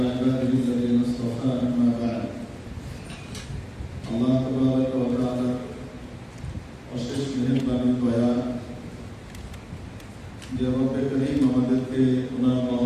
عباده الذين اصطفى أما بعد. الله تبارك وتعالى অশেষ মেহেরবানি দয়া যে রব্বে করিম আমাদেরকে ওনার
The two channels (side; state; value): both; identical; correlation 1.00